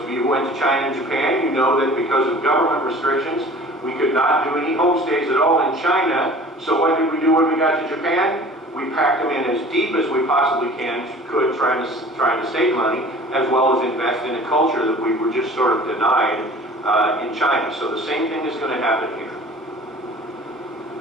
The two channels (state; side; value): normal; both; correlation 0.45